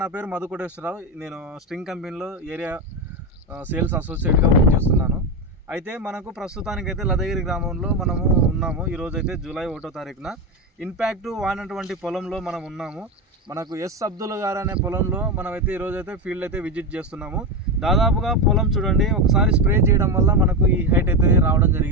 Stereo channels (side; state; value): both; normal; correlation 0.14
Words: నా పేరు మధు కోటేశ్వరరావు. నేను స్ట్రింగ్ కంపెనీలో ఏరియా సేల్స్ అసోసియేట్గా వర్క్ చేస్తున్నాను. అయితే మనకు ప్రస్తుతానికైతే లదగిరి గ్రామంలో మనము ఉన్నాము. ఈరోజు అయితే జూలై 1వ తారీఖున ఇంపాక్ట్ వాడినటువంటి పొలంలో మనం ఉన్నాము. మనకు ఎస్ అబ్దుల్ గారు అనే పొలంలో మనమైతే ఈరోజైతే ఫీల్డ్ అయితే విజిట్ చేస్తున్నాము. దాదాపుగా పొలం చూడండి, ఒకసారి స్ప్రే చేయడం వల్ల మనకు ఈ హైట్ అయితే రావడం